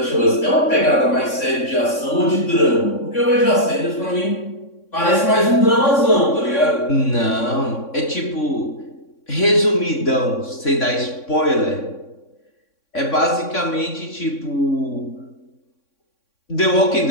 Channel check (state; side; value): late; right; 3.6 ms